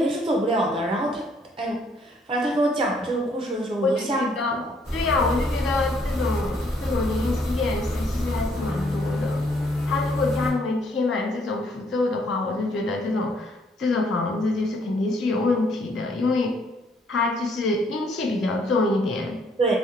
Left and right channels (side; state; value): both; normal; correlation 0.67